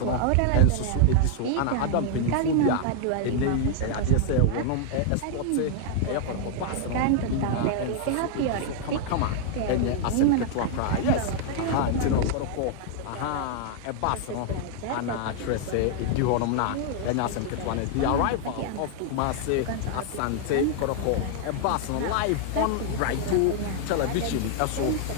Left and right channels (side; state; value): both; different; correlation 0.00